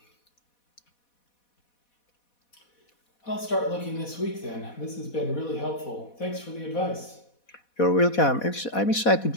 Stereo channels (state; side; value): late; right; 4.1 ms